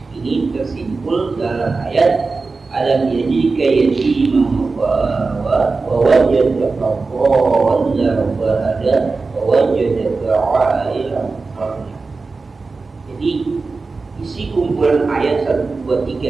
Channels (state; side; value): quieter; left; 4.0 dB